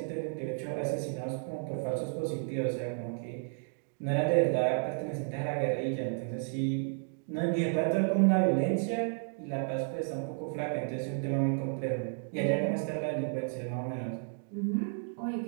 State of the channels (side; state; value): left; silent; 56 dB below the other